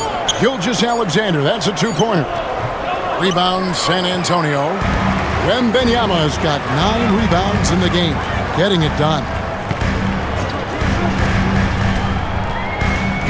Gilgeous-Alexander, that's a two-pointer. Rebound, San Antonio. Wembanyama's got 9 rebounds in the game, getting it done.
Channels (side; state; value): both; identical; correlation 1.00